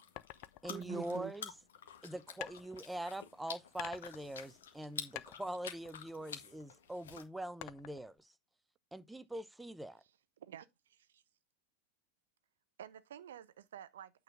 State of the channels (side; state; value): both; normal; correlation 0.63